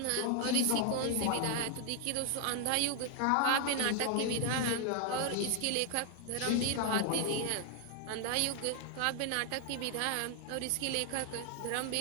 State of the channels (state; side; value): different; both; correlation 0.00